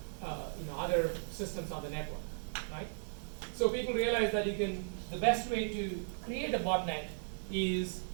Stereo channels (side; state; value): left; silent; digital silence